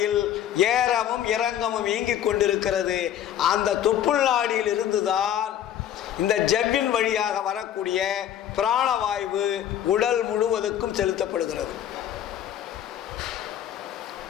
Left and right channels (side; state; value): right; quieter; 10.6 dB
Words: ஏறவும் இறங்கவும் இயங்கிக் கொண்டிருக்கிறது. அந்த தொப்புள் நாடியில் இருந்துதான் இந்த ஜவ்வின் வழியாக வரக்கூடிய பிராணவாயு உடல் முழுவதுக்கும் செலுத்தப்படுகிறது.